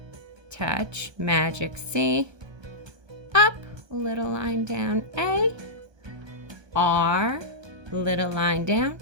Touch, magic C. Up, little line down, A. R, little line down,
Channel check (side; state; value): left; late; 1.2 ms